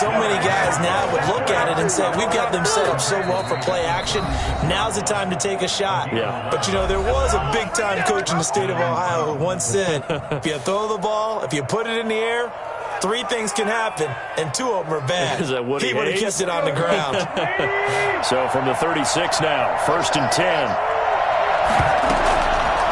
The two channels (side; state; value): both; identical; correlation 1.00